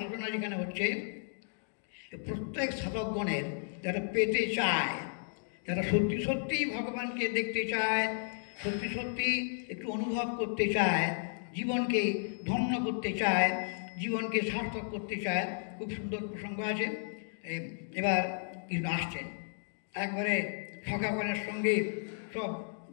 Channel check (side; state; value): right; silent; digital silence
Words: যেখানে হচ্ছে প্রত্যেক সাধকগণের যারা পেতে চায়, যারা সত্যি সত্যিই ভগবানকে দেখতে চায়, সত্যি সত্যি একটু অনুভব করতে চায়, জীবনকে ধন্য করতে চায়, জীবনকে সার্থক করতে চায়। খুব সুন্দর প্রসঙ্গ আছে। এবার কৃষ্ণ আসছেন একবারে সখাগণের সঙ্গে, সব